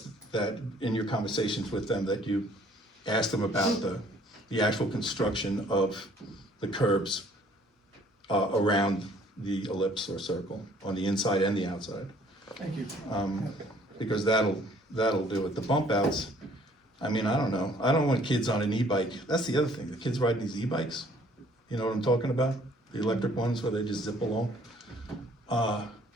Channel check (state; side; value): normal; both; correlation 0.58